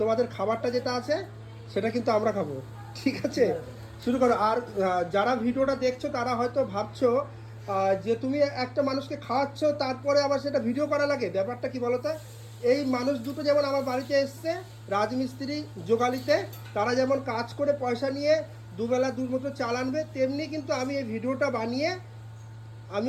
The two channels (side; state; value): both; identical; correlation 1.00